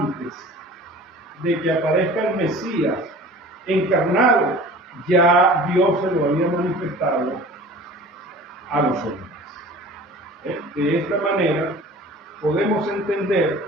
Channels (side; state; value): both; normal; correlation 0.43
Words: de que aparezca el Mesías encarnado, ya Dios se lo había manifestado a los hombres. De esta manera, podemos entender